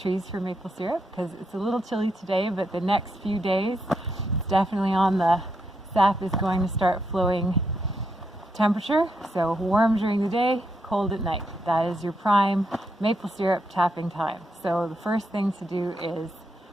for maple syrup because it's a little chilly today, but the next few days it's definitely on the sap is going to start flowing temperature. So warm during the day, cold at night. That is your prime maple syrup tapping time. So the first thing to do is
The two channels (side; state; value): both; normal; correlation 0.81